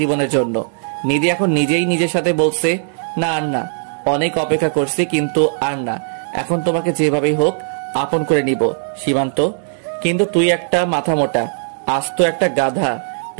জন্য। নিধি এখন নিজেই নিজের সাথে বলছে, না আর না, অনেক অপেক্ষা করছি, কিন্তু আর না, এখন তোমাকে যেভাবেই হোক আপন করে নিব সীমান্ত। কিন্তু তুই একটা মাথা মোটা, আস্ত একটা গাধা।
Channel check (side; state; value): left; silent; 60 dB below the other